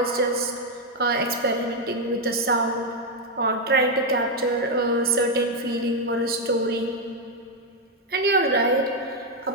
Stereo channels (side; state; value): both; normal; correlation 0.01